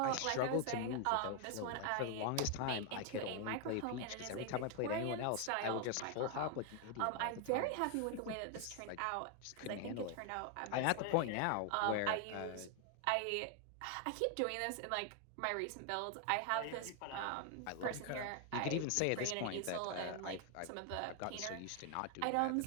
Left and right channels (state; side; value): different; both; correlation 0.01